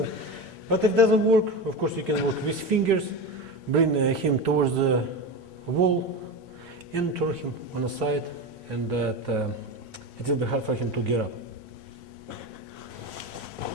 But if it doesn't work, of course you can work with fingers, bring him towards the wall, and turn him on the side, and that it will be hard for him to get up.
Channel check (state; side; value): normal; both; correlation 0.22